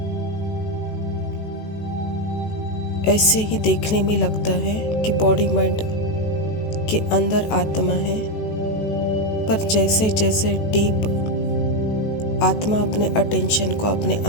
ऐसे ही देखने में लगता है कि बॉडी माइंड के अंदर आत्मा है, पर जैसे जैसे डीप आत्मा अपने अटेंशन को अपने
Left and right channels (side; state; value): right; late; 18 ms